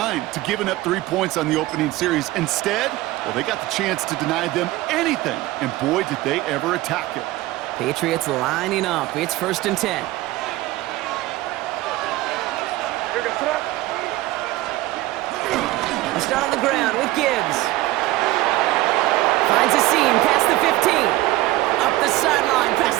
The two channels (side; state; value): left; quieter; 17.5 dB